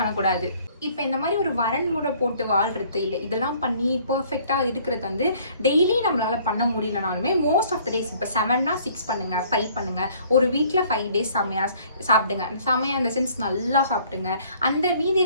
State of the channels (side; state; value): both; inverted; correlation -0.57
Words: இப்போ இந்த மாதிரி ஒரு வரன்முறை போட்டு வாழ்றது இல்லை, இதெல்லாம் பண்ணி பர்ஃபெக்டாக இருக்கிறது வந்து டெய்லி நம்மளால பண்ண முடியலனாலுமே மோஸ்ட் ஆஃப் த டேஸ் இப்போ 7னா 6 பண்ணுங்க, 5 பண்ணுங்க. ஒரு வீக்கில் 5 டேஸ் செம்மையாக சாப்பிடுங்க. செம்மையாக இந்த சென்ஸ் நல்லா சாப்பிடுங்க. அந்த மீதி